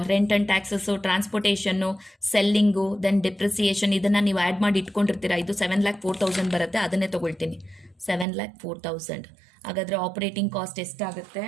rent and taxes, transportation, selling, then depreciation, ಇದನ್ನು ನೀವು ಆ್ಯಡ್ ಮಾಡಿ ಇಟ್ಕೊಂಡಿರ್ತೀರಾ. ಇದು 7,04,000 ಬರುತ್ತೆ. ಅದನ್ನೇ ತೊಗೊಳ್ತೀನಿ, 7,04,000. ಹಾಗಾದರೆ ಆಪ್ರೇಟಿಂಗ್ ಕಾಸ್ಟ್ ಎಷ್ಟಾಗುತ್ತೆ?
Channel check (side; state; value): left; drops out; at 8.2 s